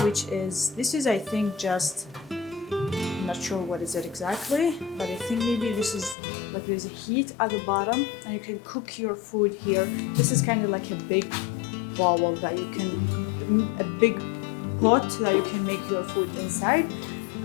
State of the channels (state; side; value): drops out; right; at 6.2 s